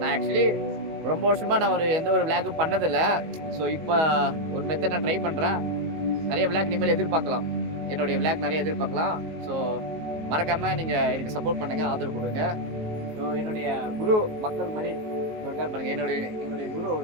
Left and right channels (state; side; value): late; left; 19 ms